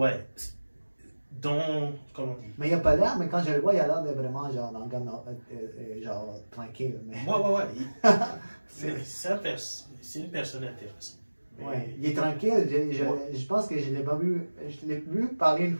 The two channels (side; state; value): both; inverted; correlation -1.00